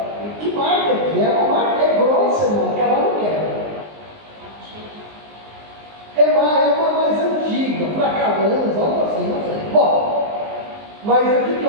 Que marca que é? Uma marca grossa, irmão, que ela não quer. É uma mais antiga, Fracalanza, algo assim, não sei. Bom, mas o que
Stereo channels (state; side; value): late; left; 19 ms